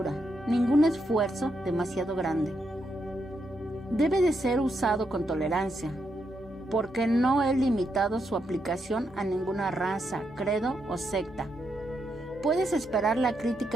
ningún esfuerzo demasiado grande. Debe de ser usado con tolerancia, porque no he limitado su aplicación a ninguna raza, credo o secta. Puedes esperar la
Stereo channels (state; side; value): normal; both; correlation 0.81